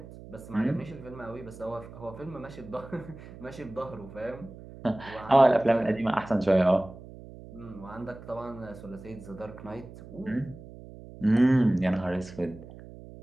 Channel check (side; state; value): right; noise; hum, 16 dB below the sound